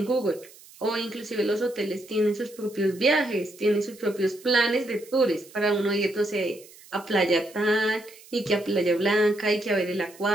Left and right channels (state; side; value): noise; right; hiss, 22 dB below the sound